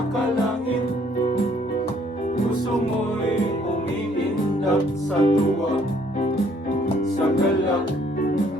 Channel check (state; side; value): normal; both; correlation 0.64